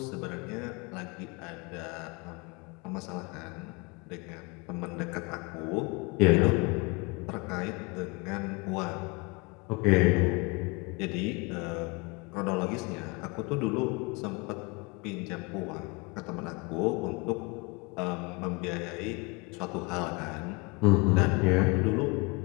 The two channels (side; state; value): right; quieter; 28.0 dB